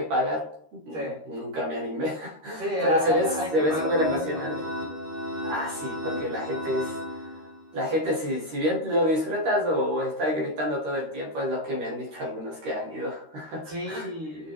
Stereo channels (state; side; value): late; left; 13 ms